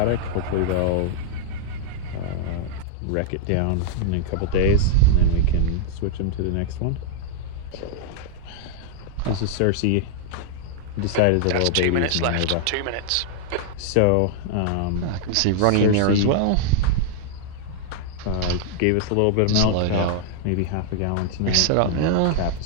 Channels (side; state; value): both; different; correlation -0.01